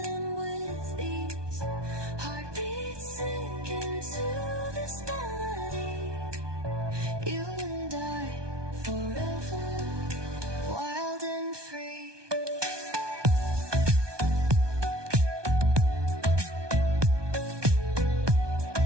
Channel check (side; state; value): left; late; 1.2 ms